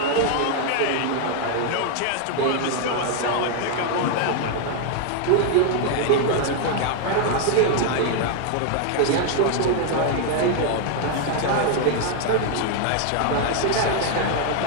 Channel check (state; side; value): different; both; correlation 0.00